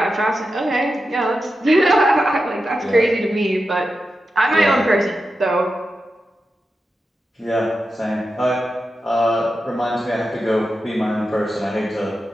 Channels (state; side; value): normal; both; correlation 0.90